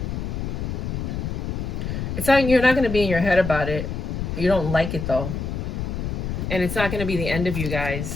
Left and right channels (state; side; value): noise; left; rumble, 4 dB below the sound